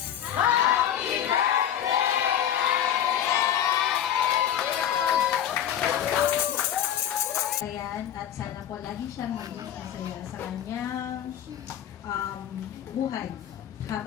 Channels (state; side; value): quieter; right; 10.2 dB